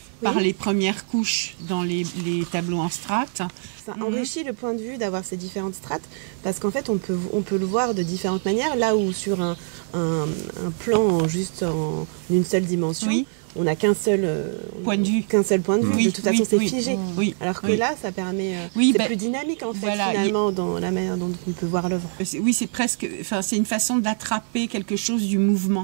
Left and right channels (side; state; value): left; silent; digital silence